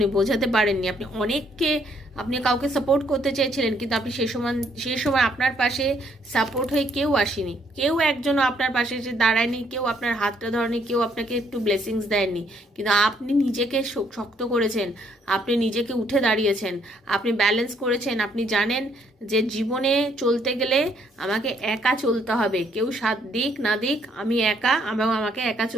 বোঝাতে পারেননি। আপনি কাউকে সাপোর্ট করতে চেয়েছিলেন, কিন্তু আপনি সেই সময় আপনার পাশে সাপোর্ট হয়ে কেউ আসেনি, কেউ একজনও আপনার পাশে এসে দাঁড়ায়নি, কেউ আপনার হাতটা ধরেনি, কেউ আপনাকে একটু ব্লেসিংস দেয়নি। কিন্তু আপনি নিজেকে শক্ত করেছেন, আপনি নিজেকে উঠে দাঁড়িয়েছেন, আপনি ব্যালেন্স করেছেন। আপনি জানেন যে জীবনে চলতে গেলে আমাকে একা চলতে হবে, কেউ সাথ দিক না দিক, আমি একা, আমাকে একা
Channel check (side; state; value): both; normal; correlation 0.69